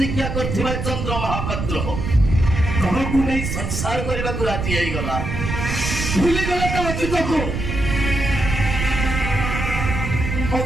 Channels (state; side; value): noise; right; rumble, 3 dB below the sound